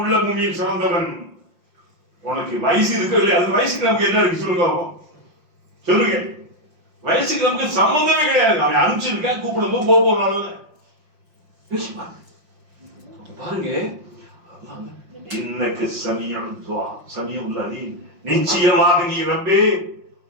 மூமியை சிறந்தவன். உனக்கு வயசு இருக்கு இல்லையா? அது வயசுக்கு நமக்கு என்ன இருக்கு சொல்லுங்க, சொல்லுங்க. வயசுக்கு நமக்கு சம்பந்தமே கிடையாது. அவன் அனுப்பிச்சிருக்கேன், கூப்பிடும்போது போனால பாருங்க. இன்னக்கு சமீஉல் துஆ, சமீஉல் அலீம், நிச்சயமாக நீ ரப்பே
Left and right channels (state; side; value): late; left; 5.6 ms